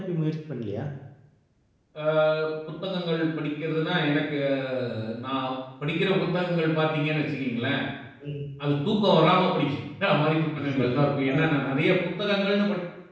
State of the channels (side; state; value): both; identical; correlation 1.00